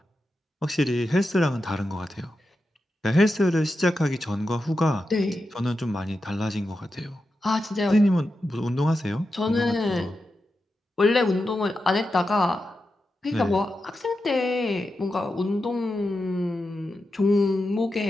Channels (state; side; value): normal; both; correlation 0.89